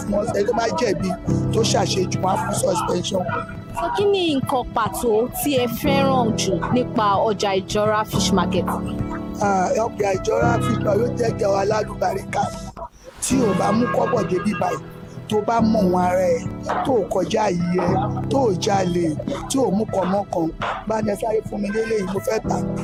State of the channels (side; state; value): both; identical; correlation 1.00